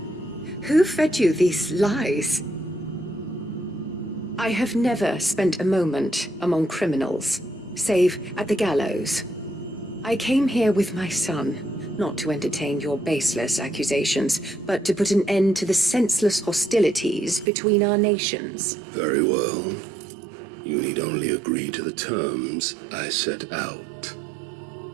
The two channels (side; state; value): left; drops out; at 17.4 s